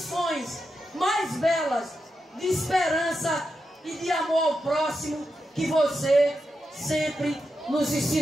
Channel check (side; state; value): both; normal; correlation 0.87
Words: mais belas de esperança e de amor ao próximo que você sempre nos